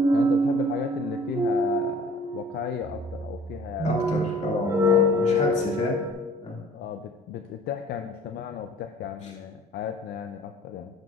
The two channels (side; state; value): both; normal; correlation 0.51